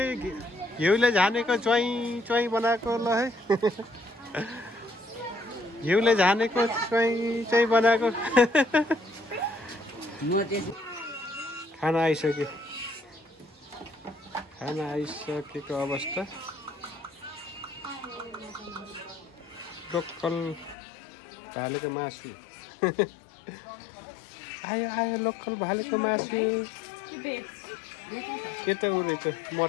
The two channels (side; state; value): right; drops out; at 20.8 s